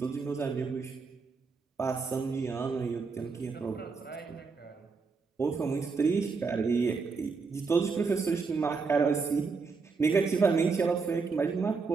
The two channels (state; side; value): quieter; left; 4.7 dB